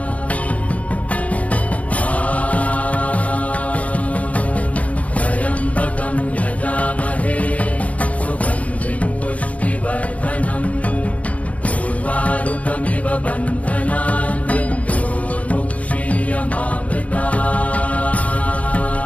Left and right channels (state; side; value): late; right; 0.067 ms